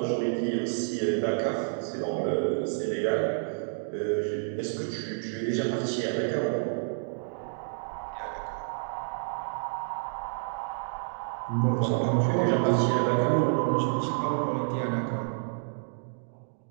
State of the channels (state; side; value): silent; left; digital silence